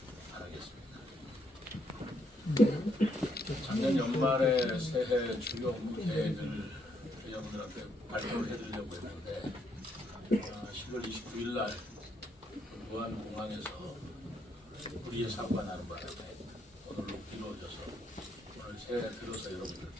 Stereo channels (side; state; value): both; normal; correlation 0.74